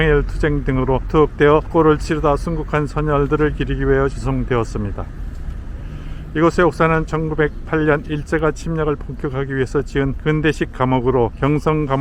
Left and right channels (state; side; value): identical; both; correlation 1.00